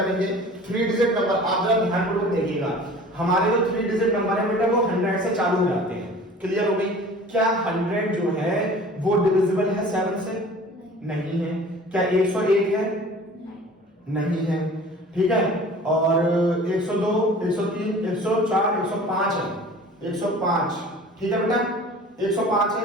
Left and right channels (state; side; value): normal; both; correlation 0.44